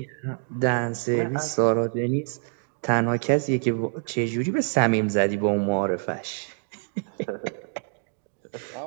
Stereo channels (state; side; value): silent; left; 59 dB below the other